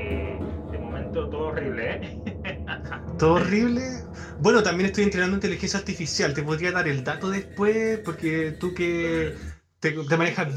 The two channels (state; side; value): identical; both; correlation 1.00